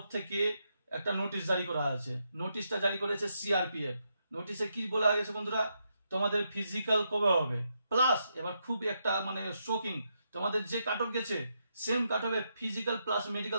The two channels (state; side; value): inverted; both; correlation -0.82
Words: থেকে একটা নোটিশ জারি করা আছে। নোটিশটা জারি করেছে সিআরপিএফ। নোটিশে কি বলা গেছে বন্ধুরা, তোমাদের ফিজিক্যাল কবে হবে, প্লাস এবার খুব একটা মানে শোকিং, তোমাদের যে কাট অফ গেছে সেম কাট অফে ফিজিক্যাল প্লাস মেডিকেল